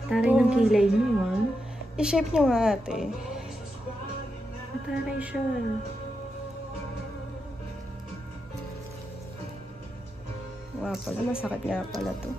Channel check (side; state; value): both; normal; correlation 0.86